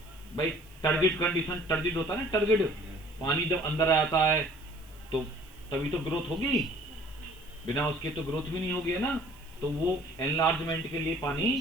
भाई टर्गिड कंडीशन, टर्गिड होता है ना, टर्गिड, पानी जब अंदर आता है तो तभी तो ग्रोथ होगी, बिना उसके तो ग्रोथ भी नहीं होगी, है ना। तो वो एनलार्जमेंट के लिए पानी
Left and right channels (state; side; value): noise; right; hiss, 26 dB below the sound